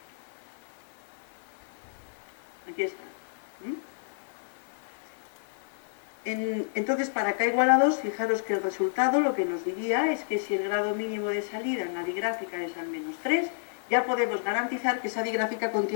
2. Aquí está. Entonces, para K igual a 2, fijaros que el resultado lo que nos diría es que si el grado mínimo de salida en la digráfica es al menos 3, ya podemos garantizar que esa digráfica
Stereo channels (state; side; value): silent; right; 58 dB below the other